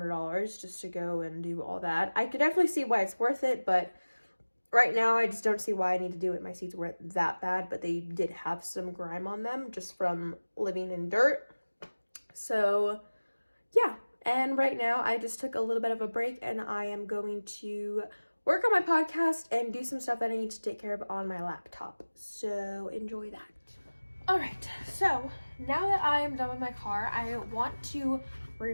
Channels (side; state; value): both; inverted; correlation -1.00